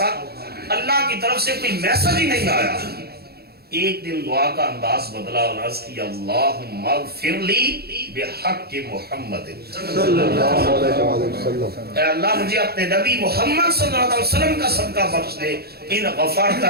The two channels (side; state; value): left; late; 0.46 ms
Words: اللہ کی طرف سے کوئی میسج ہی نہیں آیا۔ ایک دن دعا کا انداز بدلا اور عرض کیا اللہم اغفر لی بحق محمد صلی اللہ علیہ وسلم، اے اللہ مجھے اپنے نبی محمد صلی اللہ علیہ وسلم کا صدقہ بخش دے۔ ان غفرت